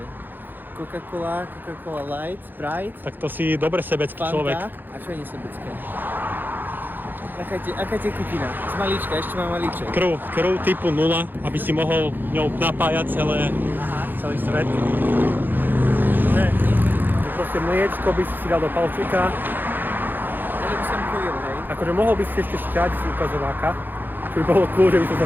Coca-Cola, Coca-Cola Light, Sprite, Tak to si dobre sebecký Fanta. človek. A čo je nesebecké? Aká tekutina? Z malíčka, ešte mám malíček. Krv typu 0, aby si mohol ňou napájať celý svet. Ne. Proste mliečko by si dal do palčíka. Ale by som pojil, hej. Akože mohol by si ešte šťať z ukazováka, čo by bolo cool, že by som sa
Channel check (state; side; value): late; left; 0.091 ms